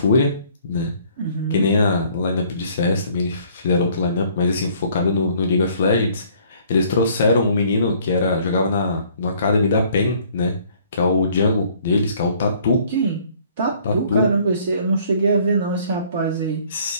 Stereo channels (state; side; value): inverted; both; correlation -0.59